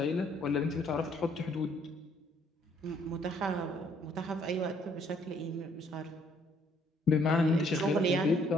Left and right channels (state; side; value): normal; both; correlation 0.65